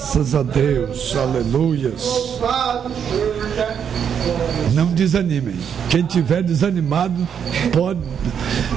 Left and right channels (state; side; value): quieter; left; 7.9 dB